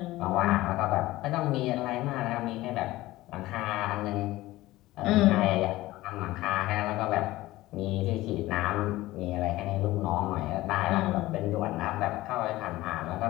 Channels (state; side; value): quieter; right; 17.6 dB